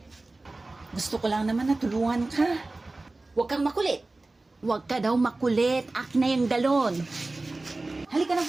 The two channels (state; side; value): quieter; left; 3.1 dB